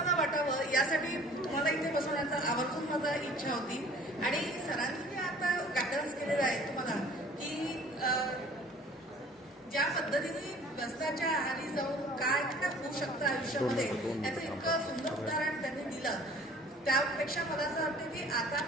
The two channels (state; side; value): normal; both; correlation 0.50